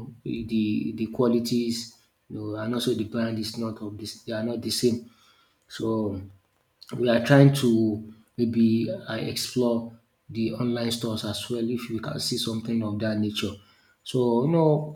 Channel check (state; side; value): identical; both; correlation 1.00